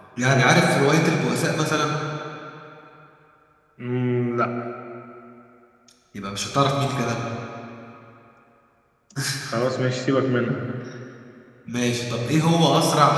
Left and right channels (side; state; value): both; identical; correlation 1.00